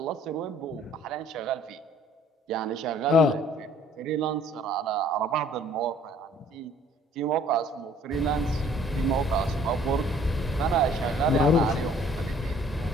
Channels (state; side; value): normal; both; correlation 0.57